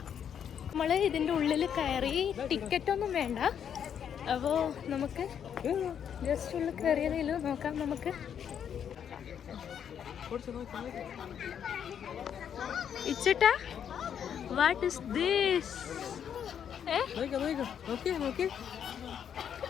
നമ്മൾ ഇതിൻ്റെ ഉള്ളിൽ കയറി. ടിക്കറ്റ് ഒന്നും വേണ്ട. അപ്പോൾ നമുക്ക് ജസ്റ്റ് ഉള്ളിൽ കയറിയതിൽ നോക്കാം. നമുക്ക് ഇച്ചിട്ടാ വാട്ട് ഇസ് ദിസ്?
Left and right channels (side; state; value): right; quieter; 8.5 dB